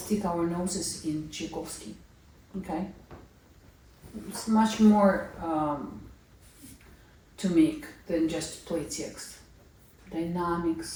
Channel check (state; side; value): identical; both; correlation 1.00